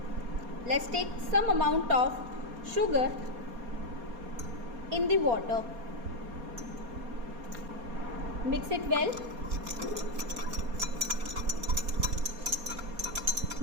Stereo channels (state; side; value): late; left; 4.2 ms